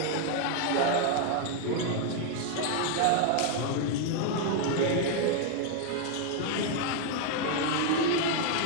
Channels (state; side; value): different; both; correlation 0.00